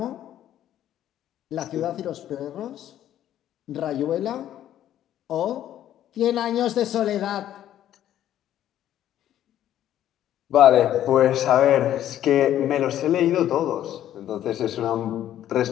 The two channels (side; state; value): right; quieter; 11.7 dB